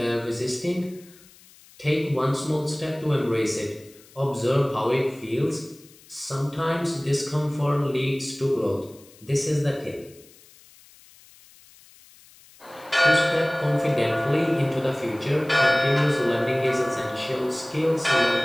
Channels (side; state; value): left; noise; hiss, 25 dB below the sound